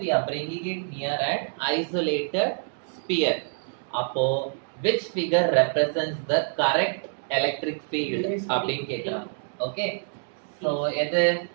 we are bringing it near an isolated sphere. அப்போ which figure represents the correct electric field அப்படினு கேக்குறாங்க. ஓகே, சோ எது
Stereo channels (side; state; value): left; silent; digital silence